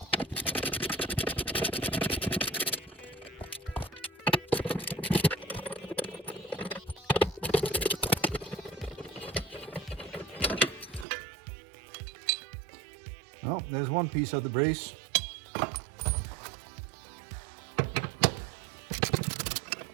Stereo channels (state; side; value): drops out; left; at 11.1 s